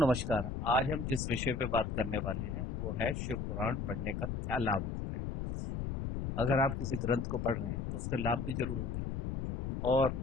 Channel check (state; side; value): noise; left; rumble, 3 dB below the sound